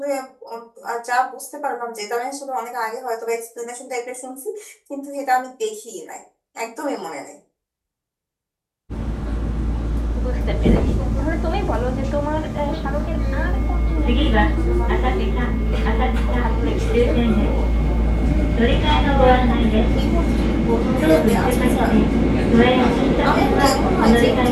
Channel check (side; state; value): both; identical; correlation 1.00